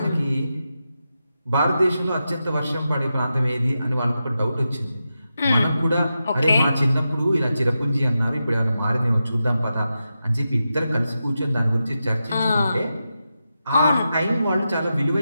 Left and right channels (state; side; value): inverted; both; correlation -0.89